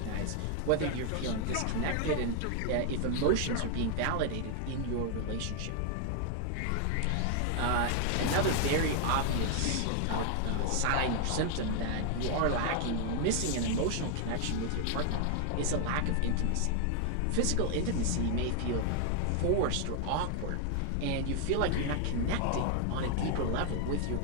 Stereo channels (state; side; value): different; both; correlation 0.00